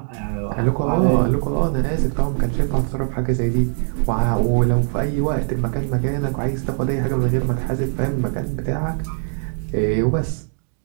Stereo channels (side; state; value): left; silent; 63 dB below the other